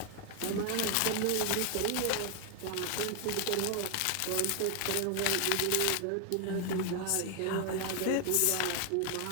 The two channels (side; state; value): both; different; correlation 0.01